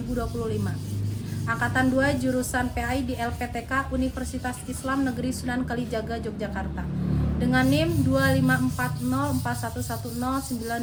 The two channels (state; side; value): identical; both; correlation 1.00